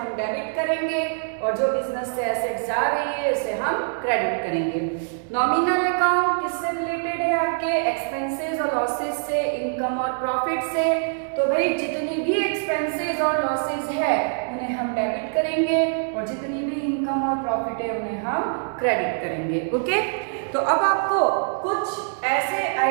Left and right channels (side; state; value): left; silent; digital silence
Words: डेबिट करेंगे, और जो बिजनेस से एसेट्स जा रही है उसे हम क्रेडिट करेंगे। नॉमिनल अकाउंट किससे रिलेटेड है, आपके एक्सपेंसेस और लॉसेस से, इनकम और प्रॉफिट से। तो भाई जितनी भी एक्सपेंसेस और लॉसेस है उन्हें हम डेबिट करेंगे, और जितनी भी इनकम और प्रॉफिट है उन्हें हम क्रेडिट करेंगे। ओके, तो अब आपको कुछ ऐसे